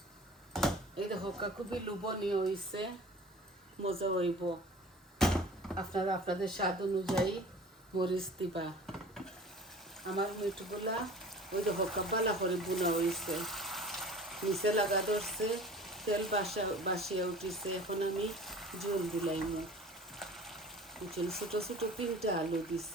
এই দেখো খুবই লোভনীয় হয়েছে মজা হইব আপনারা আপনাদের স্বাদ অনুযায়ী মরিচ দিবা আমার মিটগুলা ওই দেখো বালা করে বোনা হয়েছে নিচে লাগা ধরছে তেল বাসিয়া উঠিছে এখন আমি জল দিলাইমু বুঝছেন ছোট ছোট 3টা আলু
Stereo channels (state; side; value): normal; both; correlation 0.43